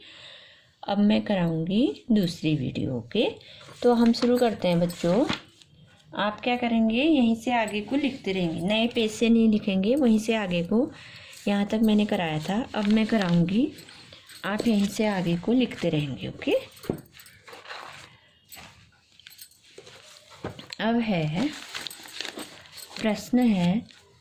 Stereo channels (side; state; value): both; identical; correlation 1.00